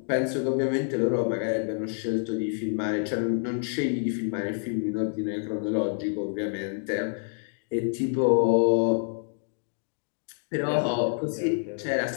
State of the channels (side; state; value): right; silent; digital silence